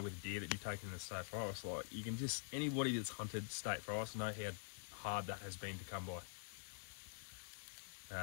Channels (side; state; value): right; silent; digital silence